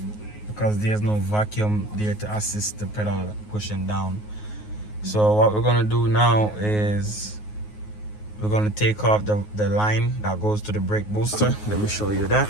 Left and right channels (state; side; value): late; right; 9.5 ms